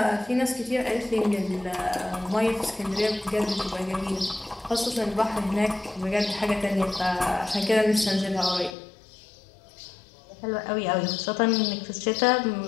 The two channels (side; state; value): right; drops out; at 8.8 s